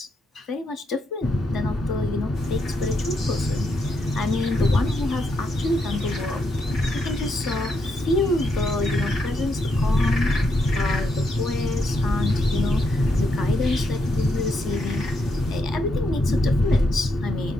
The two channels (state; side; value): normal; both; correlation 0.79